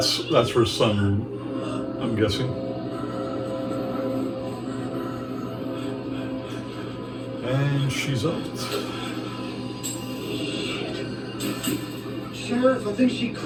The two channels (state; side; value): identical; both; correlation 1.00